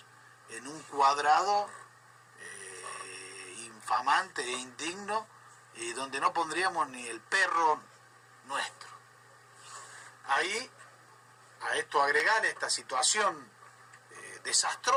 en un cuadrado infamante e indigno, donde no pondríamos ni el perro nuestro. Ahí, a esto agregar esta situación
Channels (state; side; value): identical; both; correlation 1.00